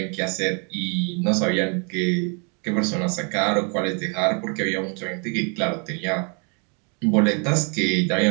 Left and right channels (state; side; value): quieter; left; 36.5 dB